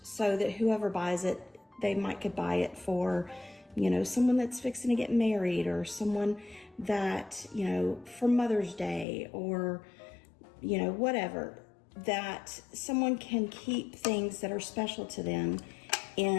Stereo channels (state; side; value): drops out; right; at 9.1 s